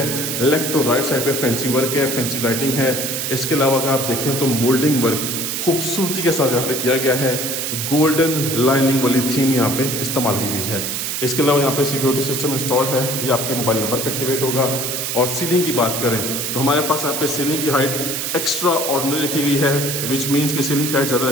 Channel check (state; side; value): noise; right; hiss, 2 dB below the sound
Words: लेफ्ट और राइट साइड पे फैंसी वर्क है, फैंसी लाइटिंग है। इसके अलावा अगर आप देखें तो मोल्डिंग वर्क खूबसूरती के साथ यहाँ पे किया गया है, गोल्डन लाइनिंग वाली थीम यहाँ पे इस्तेमाल की गई है। इसके अलावा यहाँ पे सिक्योरिटी सिस्टम इंस्टॉल्ड है, ये आपके मोबाइल नंबर पे एक्टिवेट होगा। और सीलिंग की बात करें तो हमारे पास यहाँ पे सीलिंग की हाइट एक्स्ट्रा ऑर्डिनरी रखी गई है, विच मीन्स कि सीलिंग की हाइट ज़्यादा